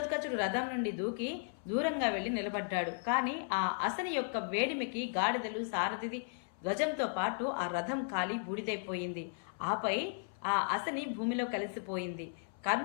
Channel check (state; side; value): silent; right; 54 dB below the other